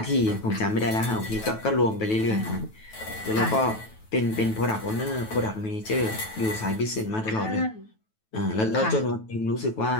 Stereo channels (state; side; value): late; right; 9.2 ms